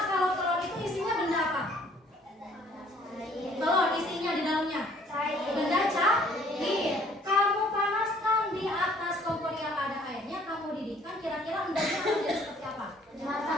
kalau telur itu isinya benda apa? Telur isinya di dalamnya benda cair. Kamu panaskan di atas kompor yang ada airnya, kamu didihkan, kira-kira endamnya akan jadi seperti apa?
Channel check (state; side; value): normal; both; correlation 0.59